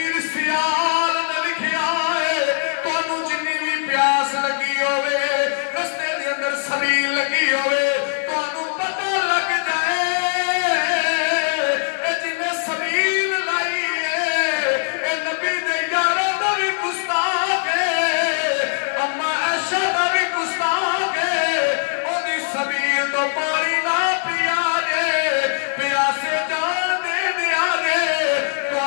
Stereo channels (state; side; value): silent; right; 65 dB below the other